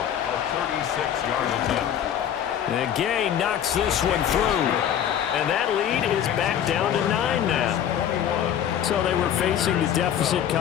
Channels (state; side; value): quieter; right; 9.8 dB